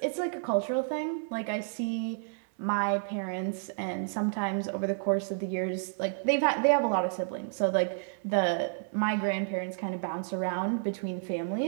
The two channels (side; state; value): left; silent; 57 dB below the other